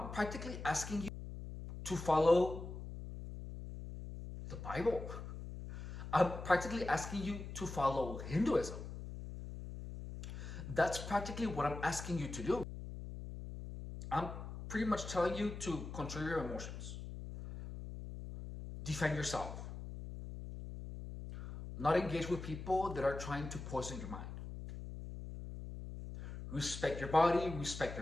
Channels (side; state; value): left; noise; hum, 9 dB below the sound